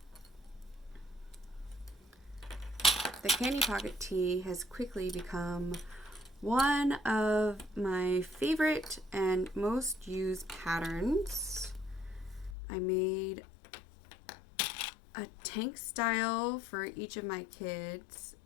The candy pocket tee has quickly become one of my favorite and most used patterns. I made a tank style for each of my kids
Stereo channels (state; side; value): drops out; right; at 12.6 s